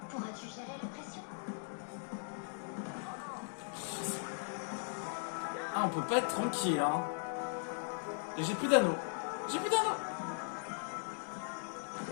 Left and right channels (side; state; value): right; silent; digital silence